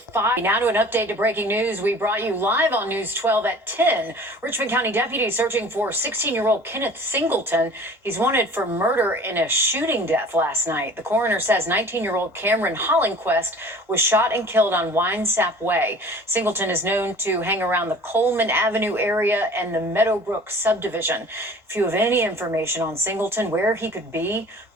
5. Now to an update to breaking news we brought you live on News 12 at 10. Richmond County deputies searching for 16-year-old Kenneth Singleton. He's wanted for murder in a shooting death last night. The coroner says 19-year-old Cameron Hollingquest was shot and killed on Winesap Way. Singleton is known to hang around the Coleman Avenue area and the Meadowbrook subdivision. If you have any information on Singleton, where he could be,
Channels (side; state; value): both; normal; correlation 0.45